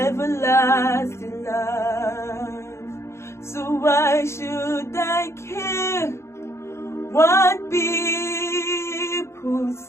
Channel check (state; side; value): late; right; 0.13 ms